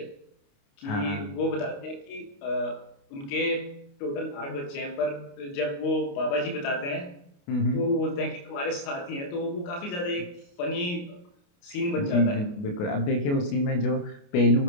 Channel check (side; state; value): right; late; 29 ms